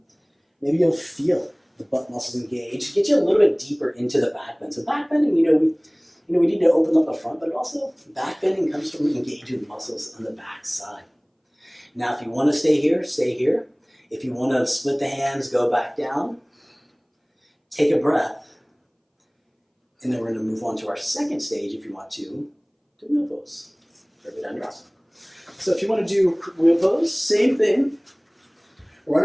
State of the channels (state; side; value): identical; both; correlation 1.00